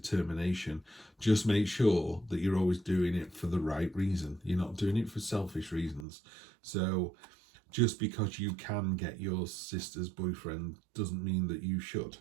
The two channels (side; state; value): left; drops out; at 6.1 s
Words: Just make sure that you're always doing it for the right reason. You're not doing it for selfish reasons. So just because you can get your sister's boyfriend doesn't mean that you should.